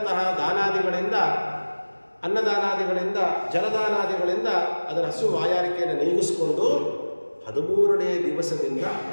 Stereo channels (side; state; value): both; inverted; correlation -1.00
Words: ದಾನಾದಿಗಳಿಂದ, ಅನ್ನದಾನಾದಿಗಳಿಂದ, ಜಲದಾನಾದಿಗಳಿಂದ ಅದರ ಹಸು ಬಾಯಾರಿಕೆಯನ್ನು ನೀಗಿಸ್ಕೊಂಡು 13ನೇ ದಿವಸದಿಂದ